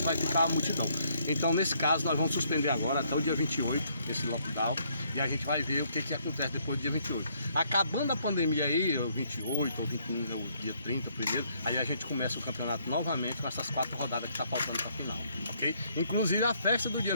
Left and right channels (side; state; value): both; inverted; correlation -0.69